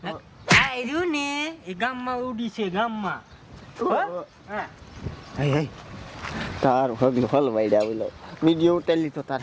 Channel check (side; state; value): both; identical; correlation 1.00